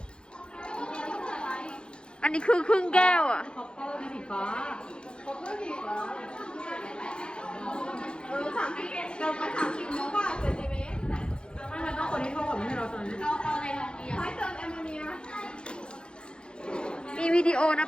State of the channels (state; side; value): late; right; 0.052 ms